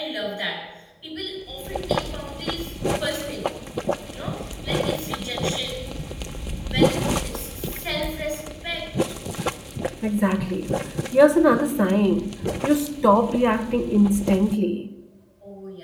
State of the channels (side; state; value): both; identical; correlation 1.00